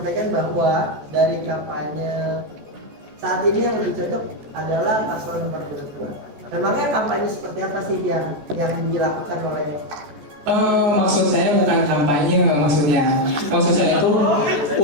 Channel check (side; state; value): left; late; 14 ms